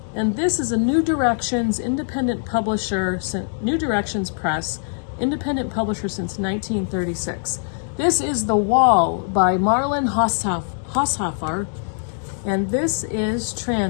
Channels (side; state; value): right; silent; digital silence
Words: And this is a New Directions independent publisher, New Directions Press, independent publisher since 1936. This is The Wall by Marlon Haushofer, and this is